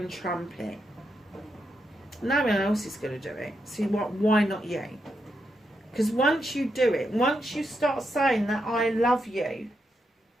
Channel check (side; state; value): both; normal; correlation 0.83